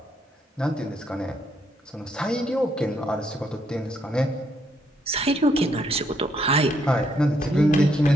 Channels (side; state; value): both; normal; correlation 0.74